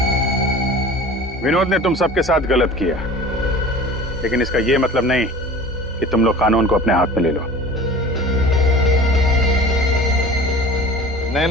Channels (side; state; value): both; normal; correlation 0.41